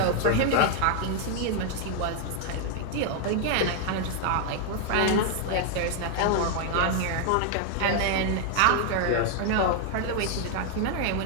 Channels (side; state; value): both; different; correlation 0.00